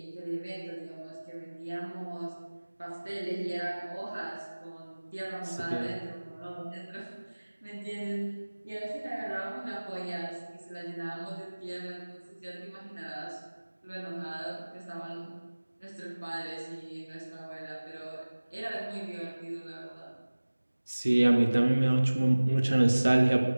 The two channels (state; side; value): inverted; both; correlation -1.00